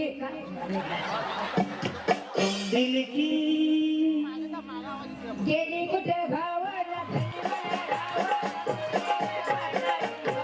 दिल की गेली कुठे गावाला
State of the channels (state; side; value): identical; both; correlation 1.00